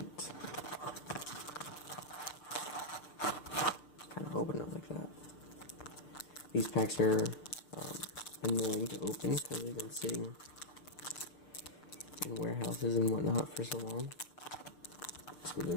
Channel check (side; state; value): right; late; 6.7 ms